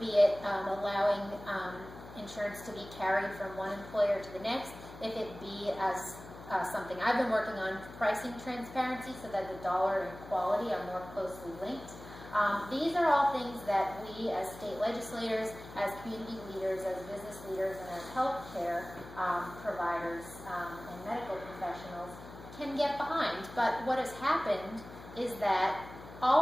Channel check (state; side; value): noise; left; hum, 15 dB below the sound